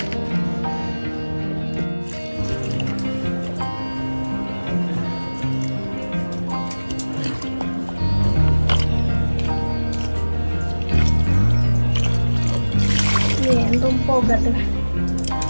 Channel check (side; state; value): both; inverted; correlation -1.00